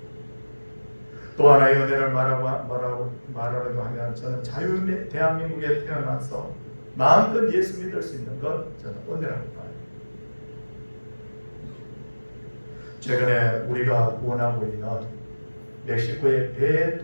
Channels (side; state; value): both; inverted; correlation -1.00